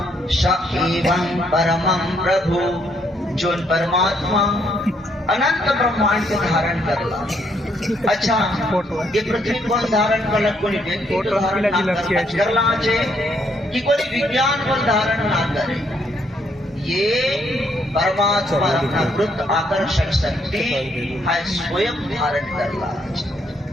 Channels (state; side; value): normal; both; correlation 0.72